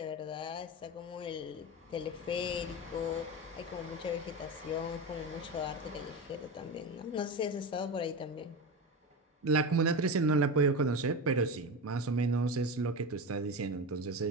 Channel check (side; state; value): both; normal; correlation 0.22